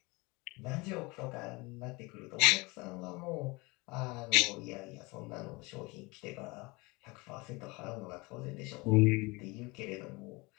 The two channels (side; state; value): right; quieter; 25.1 dB